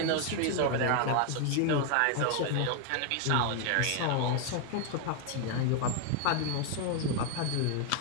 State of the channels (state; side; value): different; both; correlation 0.00